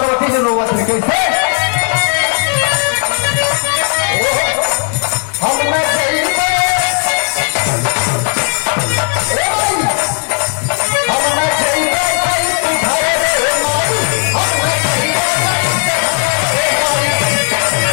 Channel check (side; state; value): right; quieter; 39.4 dB